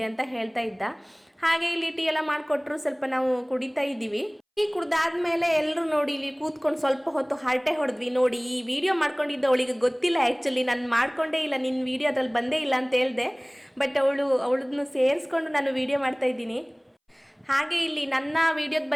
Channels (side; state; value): both; identical; correlation 1.00